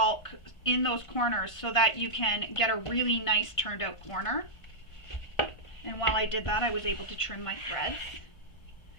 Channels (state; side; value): late; right; 1.5 ms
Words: in those corners so that you can get a really nice turned out corner. And while I did that, I was able to trim my threads.